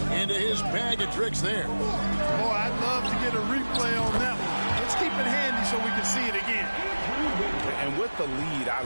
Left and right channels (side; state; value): both; inverted; correlation -1.00